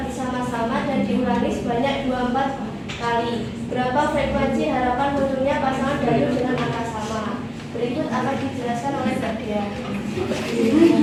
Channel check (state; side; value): identical; both; correlation 1.00